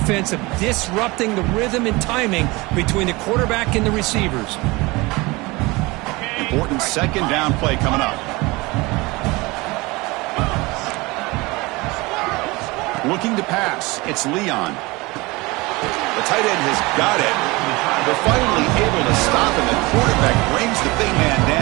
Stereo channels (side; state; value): left; quieter; 23.3 dB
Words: of disrupting the rhythm and timing between the quarterback and the receivers. Important 2nd down play coming up. Looking to pass. It's Leon. The tight end has got it. They're finally able to stop him. The quarterback brings the big man